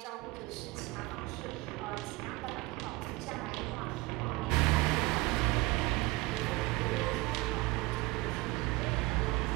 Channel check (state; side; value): quieter; left; 21.8 dB